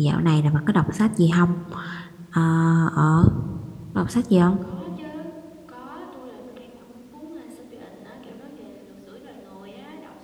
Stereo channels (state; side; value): identical; both; correlation 1.00